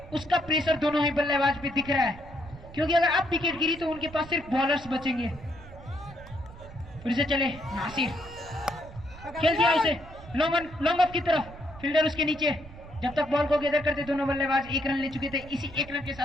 उसका प्रेशर दोनों ही बल्लेबाज पे दिख रहा है, क्योंकि अगर अब विकेट गिरी तो उनके पास सिर्फ बॉलर्स बचेंगे। फिर से चले नासिर, खेल दिया उसे लॉन्ग ऑफ की तरफ, फील्डर उसके नीचे। जब तक बॉल को गैदर करते दोनों बल्लेबाज 1 रन ले चुके थे। इसी 1 रन के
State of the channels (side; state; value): right; noise; rumble, 17 dB below the sound